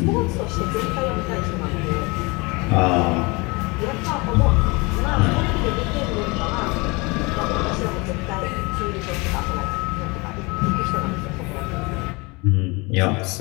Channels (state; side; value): quieter; right; 26.7 dB